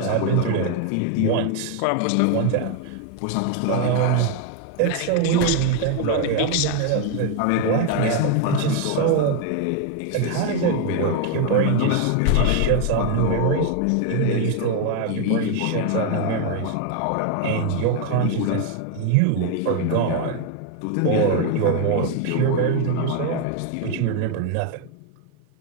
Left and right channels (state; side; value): different; both; correlation 0.01